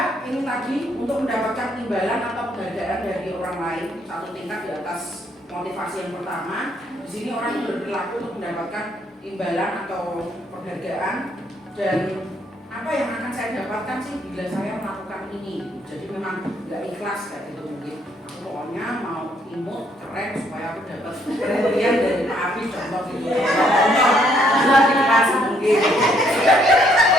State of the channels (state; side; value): normal; both; correlation 0.69